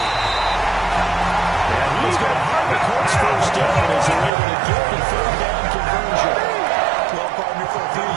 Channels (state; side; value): drops out; left; at 4.3 s